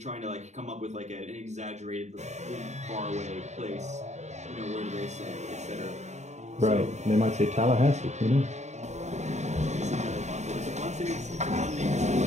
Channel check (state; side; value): late; left; 0.33 ms